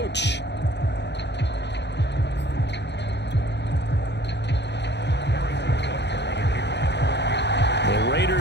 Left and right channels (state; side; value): late; right; 0.50 ms